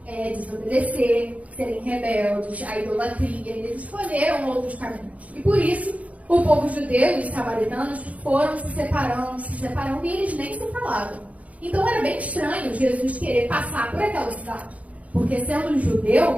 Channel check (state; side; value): late; left; 0.068 ms